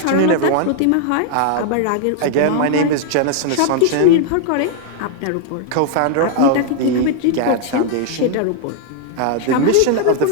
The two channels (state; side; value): different; both; correlation 0.00